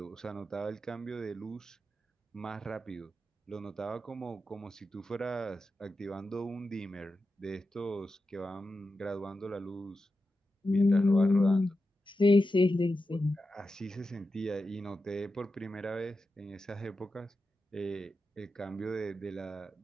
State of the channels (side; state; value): both; normal; correlation 0.90